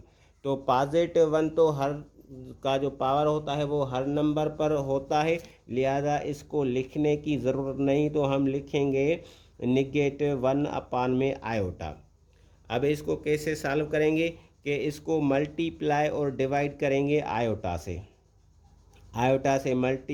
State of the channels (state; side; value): identical; both; correlation 1.00